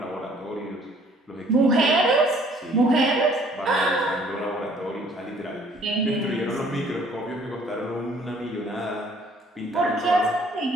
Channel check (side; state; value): both; normal; correlation 0.58